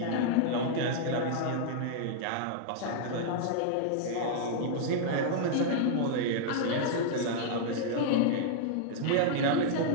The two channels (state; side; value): different; both; correlation -0.01